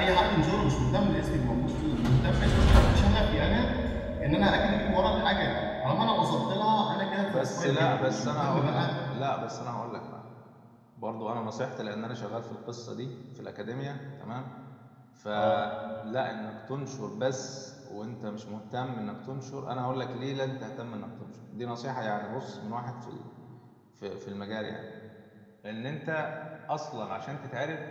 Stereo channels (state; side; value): identical; both; correlation 1.00